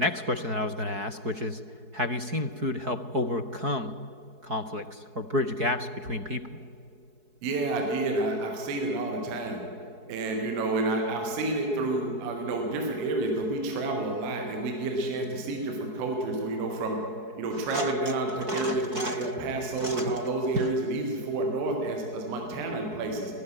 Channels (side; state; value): left; late; 4.7 ms